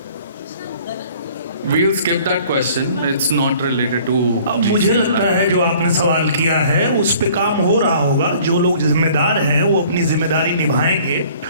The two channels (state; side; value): inverted; both; correlation -0.53